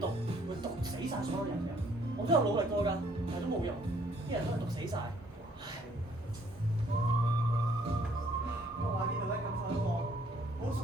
毒會毒死晒所有人嘅。我都有努力過㗎，但係都冇用，啲人都係毒死晒。我話呢度咧感受一個好熟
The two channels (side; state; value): both; normal; correlation 0.63